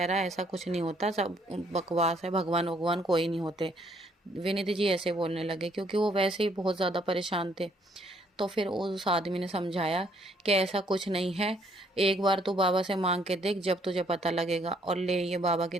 रहा है ऐसा कुछ नहीं होता, सब बकवास है, भगवान भगवान कोई नहीं होते। विनीत जी ऐसे बोलने लगे क्योंकि वो वैसे ही बहुत ज़्यादा परेशान थे। तो फिर उस आदमी ने समझाया कि ऐसा कुछ नहीं है, एक बार तू बाबा से मांग के देख, जब तुझे पता लगेगा। और ले ये बाबा की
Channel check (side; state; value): both; normal; correlation 0.67